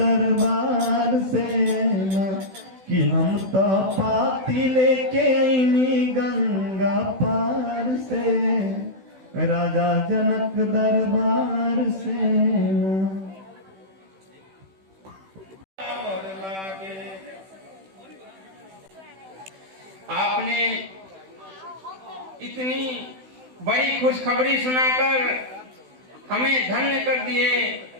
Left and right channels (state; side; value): late; left; 16 ms